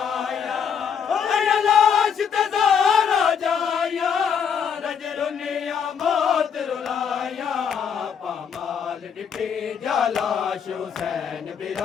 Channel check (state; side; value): quieter; right; 7.2 dB